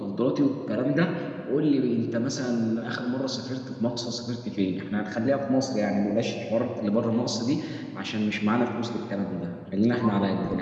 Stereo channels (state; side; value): identical; both; correlation 1.00